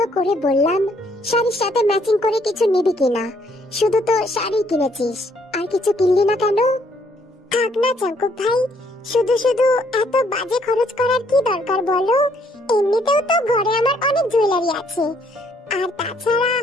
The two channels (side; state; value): both; normal; correlation 0.67